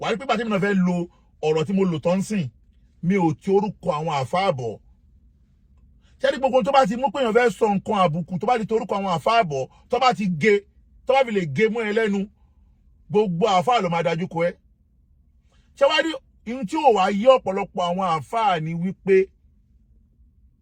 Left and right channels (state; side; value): identical; both; correlation 1.00